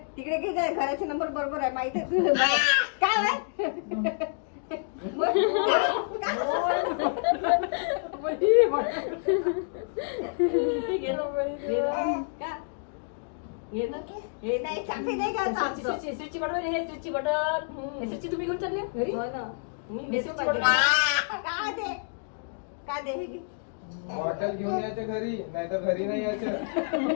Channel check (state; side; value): silent; right; digital silence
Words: तिकडे की काय घराचे नंबर बरोबर आहे माहिती आहे तुला काय आहे? मग का? हे ना? हे नाही चाकरी नाही का आमचं? स्विचची बटन हे स्विचची बटन स्विचची तुम्ही घेऊन चालले घरी हो ना. मी हे स्विचची बटन. बटन का दे का दे हे घे. बॉटल घेऊन यायचं घरी नाही तर घरी नाही यायचं.